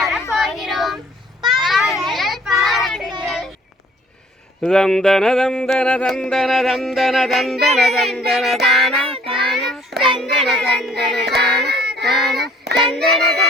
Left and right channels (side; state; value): both; normal; correlation 0.57